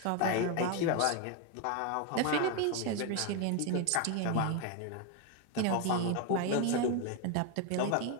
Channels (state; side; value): different; both; correlation 0.01